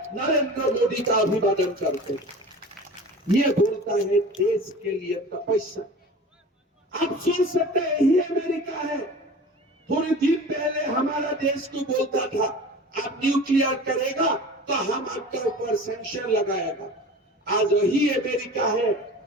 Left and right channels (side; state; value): both; normal; correlation 0.38